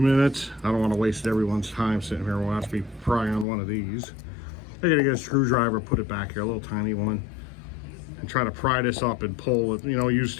I don't want to waste everyone's time sitting here watching me pry on one of these. I got to get a screwdriver, put it back here, a little tiny one, and try to pry this up and pull it. You know, use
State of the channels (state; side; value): drops out; right; at 3.5 s